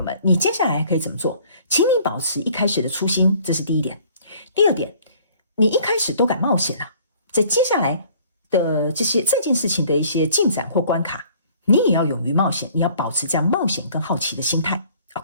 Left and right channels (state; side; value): inverted; both; correlation -0.56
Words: 们，你接下来可以怎么做？请你保持一开始的初心，这是第一点。第二点，你一开始都敢冒险了，在接下来的这件事情的一些进展或关卡，你也要勇于冒险，你要保持这样冒险跟好奇的心态。